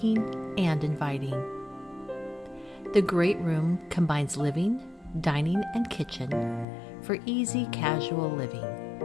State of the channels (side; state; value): right; drops out; at 6.7 s